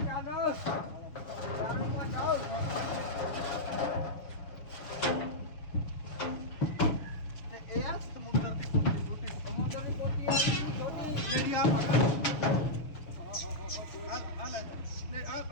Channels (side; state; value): right; late; 6.5 ms